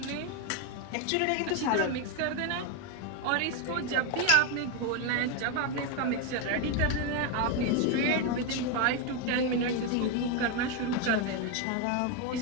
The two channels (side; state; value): both; different; correlation 0.02